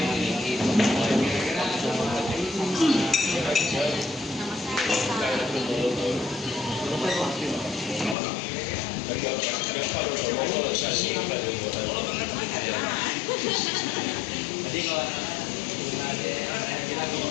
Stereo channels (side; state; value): right; drops out; at 8.2 s